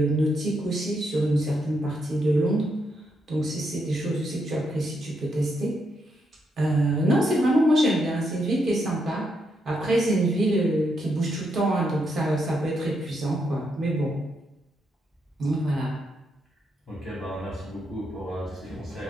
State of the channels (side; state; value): both; normal; correlation 0.79